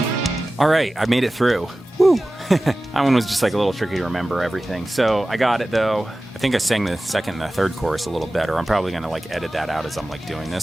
All right, I made it through. Woo! That one was just like a little tricky to remember everything. So I got it though. I think I sang the second and the third chorus a little better. I'm probably gonna like edit that out as I'm like doing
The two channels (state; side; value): normal; both; correlation 0.96